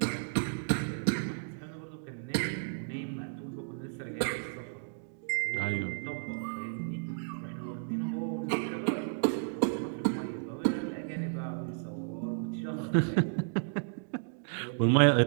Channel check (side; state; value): left; silent; digital silence